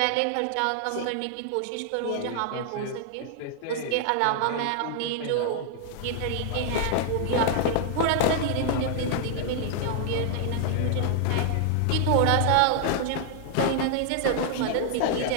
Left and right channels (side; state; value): both; different; correlation -0.01